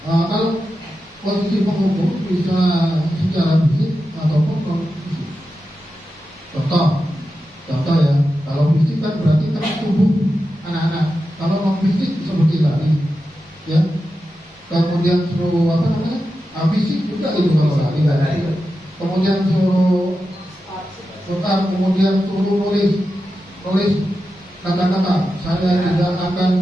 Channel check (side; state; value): both; normal; correlation 0.91